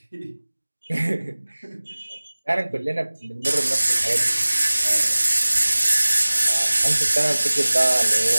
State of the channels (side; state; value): both; inverted; correlation -1.00